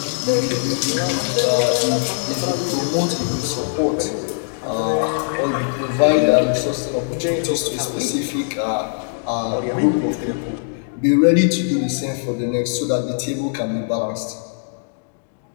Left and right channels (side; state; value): right; silent; digital silence